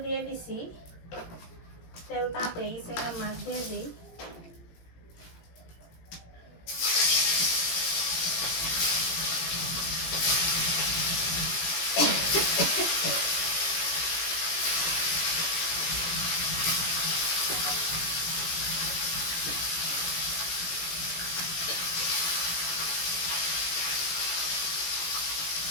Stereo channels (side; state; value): right; late; 18 ms